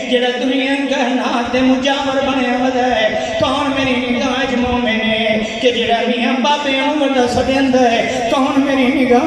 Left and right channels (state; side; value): identical; both; correlation 1.00